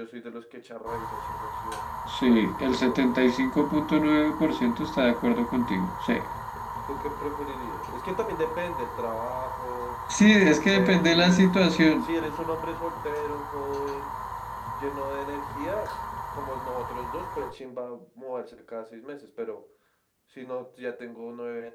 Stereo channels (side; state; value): both; identical; correlation 1.00